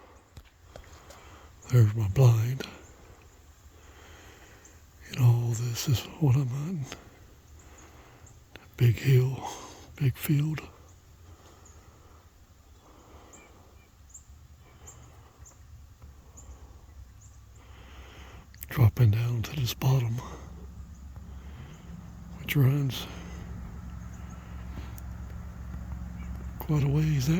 there's my blind. And all this is what I'm hunting. Big hill, big field. Dropping down to this bottom, which runs quite a ways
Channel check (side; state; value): both; identical; correlation 1.00